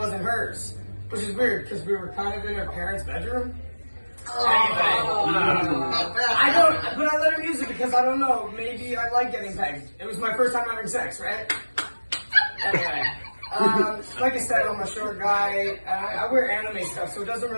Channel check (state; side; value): inverted; both; correlation -1.00